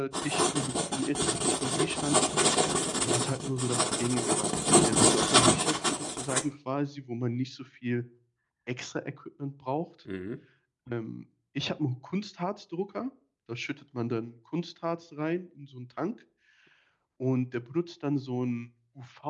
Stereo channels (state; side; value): identical; both; correlation 1.00